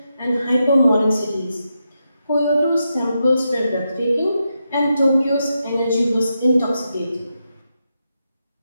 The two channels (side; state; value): both; inverted; correlation -0.86